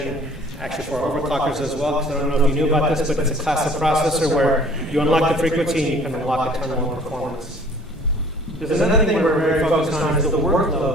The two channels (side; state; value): both; normal; correlation 0.52